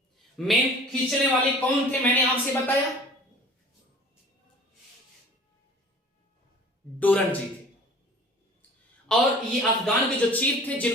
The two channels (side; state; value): both; normal; correlation 0.46